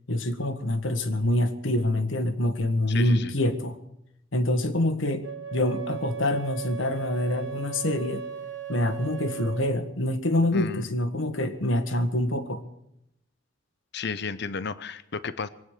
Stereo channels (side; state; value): both; normal; correlation 0.51